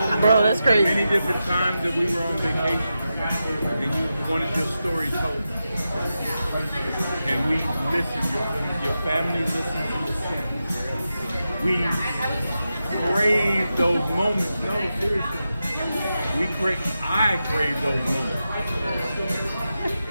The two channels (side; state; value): both; inverted; correlation -0.90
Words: Bro, that's crazy. many different times that we were on vacation and you wanted your story told. And we listened, your family listened to your story. We crave those moments. No, seriously. I crave those moments.